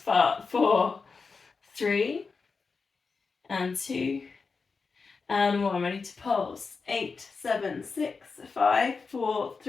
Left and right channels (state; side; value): quieter; right; 4.7 dB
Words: 4, 3, and 2, and 1, ready to pulse, 8, 7, 6, 5, 4,